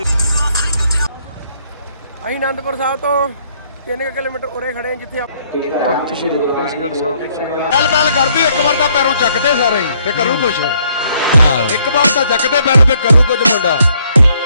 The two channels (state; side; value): inverted; both; correlation -0.68